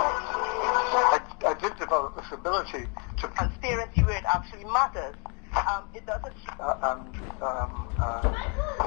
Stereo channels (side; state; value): right; quieter; 35.5 dB